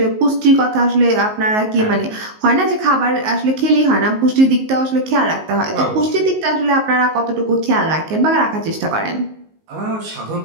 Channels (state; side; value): late; left; 19 ms